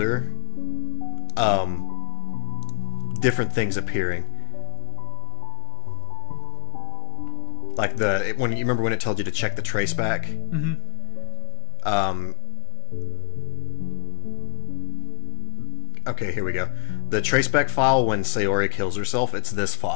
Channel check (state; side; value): quieter; right; 33.2 dB